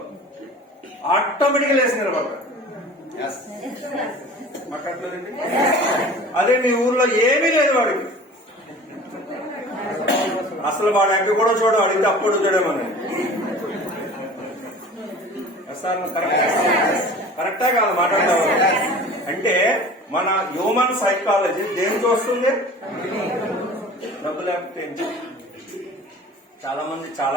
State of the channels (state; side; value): normal; both; correlation 0.42